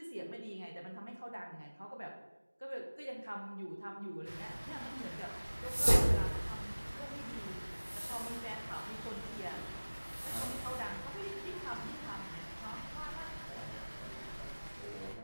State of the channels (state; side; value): inverted; both; correlation -1.00